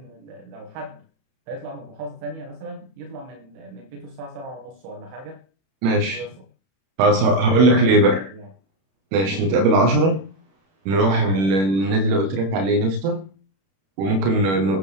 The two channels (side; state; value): left; late; 31 ms